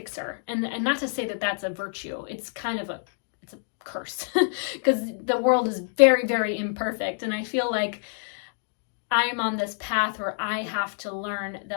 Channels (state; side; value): silent; right; digital silence